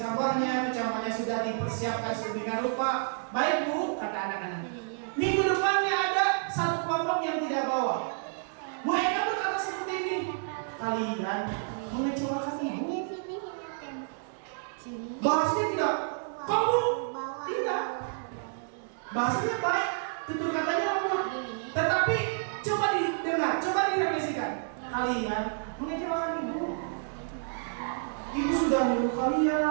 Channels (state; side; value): silent; left; digital silence